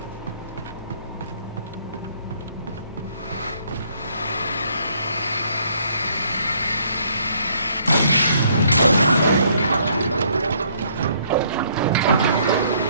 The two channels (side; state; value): both; inverted; correlation -0.66